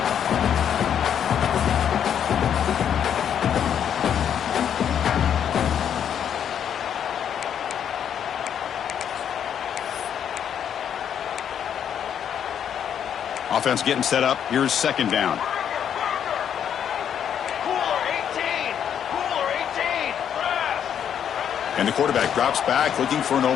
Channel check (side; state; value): right; quieter; 8.8 dB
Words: Offense getting set up. Here's second down. And the quarterback drops back looking for an